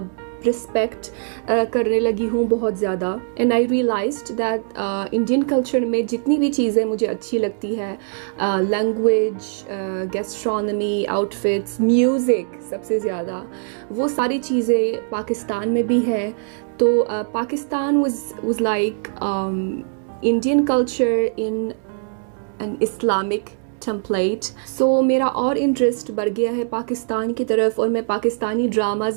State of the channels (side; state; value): left; silent; digital silence